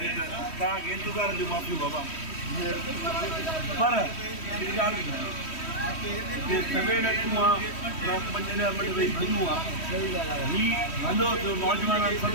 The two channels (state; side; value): late; right; 3.1 ms